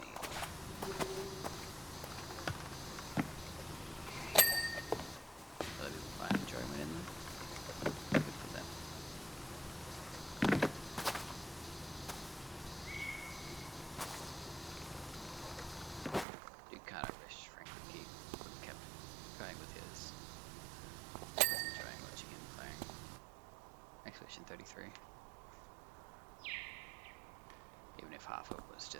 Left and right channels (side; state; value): left; drops out; at 16.2 s